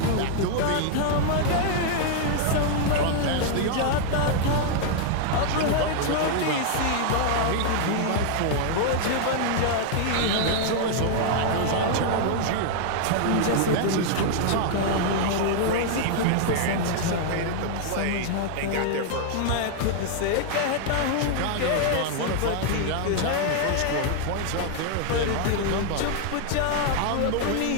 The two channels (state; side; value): different; both; correlation 0.00